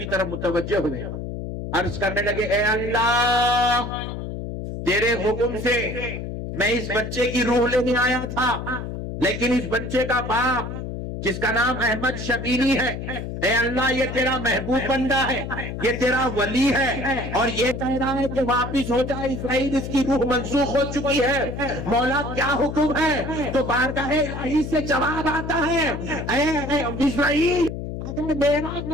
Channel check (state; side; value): noise; left; hum, 6 dB below the sound